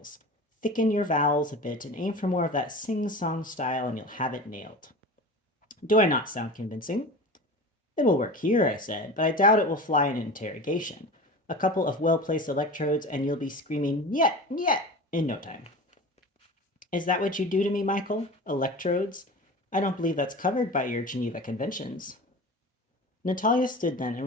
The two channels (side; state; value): both; normal; correlation 0.34